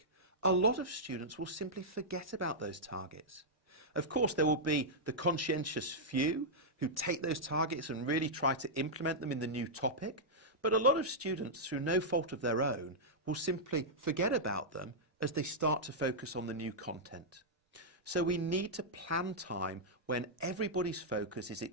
a lot of students will simply forget about those targets. Of course, there will be the conscientious few who take those targets and really try to implement them in the new topic, but a lot of students, through no fault of their own, will simply forget about them as they start to focus on the new content. So we need to plan time when everybody's focus is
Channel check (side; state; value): both; normal; correlation -0.09